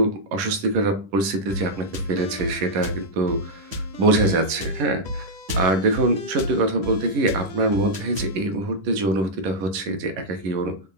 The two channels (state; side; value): late; left; 10 ms